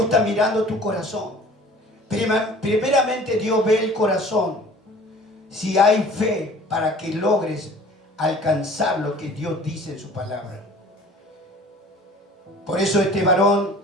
está mirando tu corazón. Primeramente Dios ve el corazón. Si hay fe para que logres alcanzar lo que Dios dice en su palabra. Por eso este varón,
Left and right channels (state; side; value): normal; both; correlation 0.47